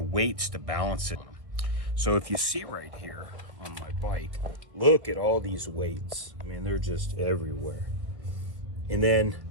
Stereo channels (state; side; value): late; left; 1.4 ms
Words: weights to balance it. So if you see right here on my bike, look at all these weights. I mean, they're just everywhere. And then,